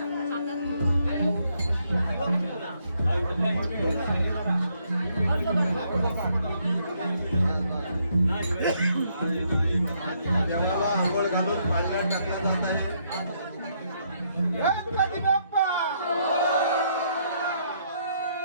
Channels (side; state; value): both; inverted; correlation -0.73